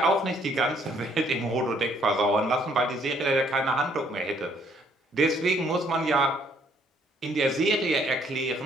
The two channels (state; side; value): normal; both; correlation 0.65